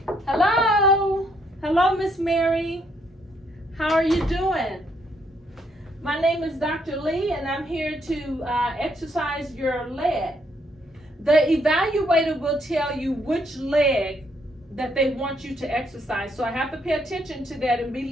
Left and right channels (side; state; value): both; normal; correlation 0.72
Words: Hello, Miss Mary. How are you doing? My name is Dr. Lee, and I'm here to exercise your leg. The evaluator will tell you which leg that they want you to exercise. So I have to pay attention to that and be